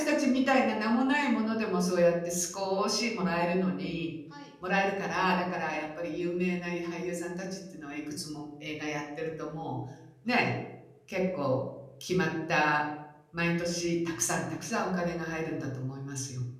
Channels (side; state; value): both; identical; correlation 1.00